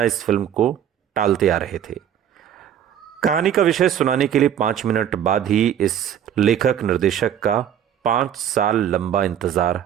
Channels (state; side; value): quieter; left; 9.7 dB